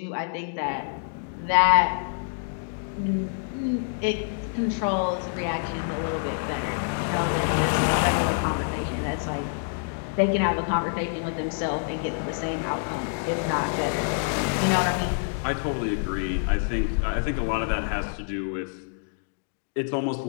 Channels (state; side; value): silent; right; digital silence